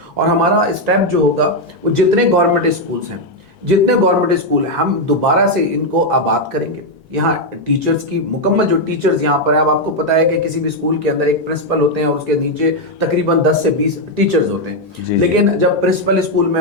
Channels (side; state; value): both; normal; correlation 0.02